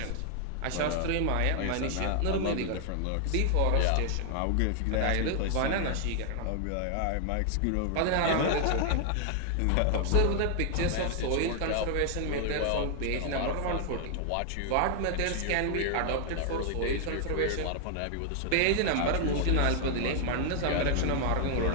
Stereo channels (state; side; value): different; both; correlation 0.00